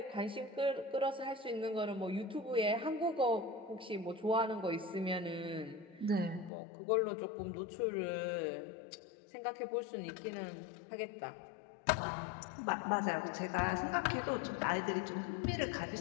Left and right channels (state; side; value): drops out; right; at 6.5 s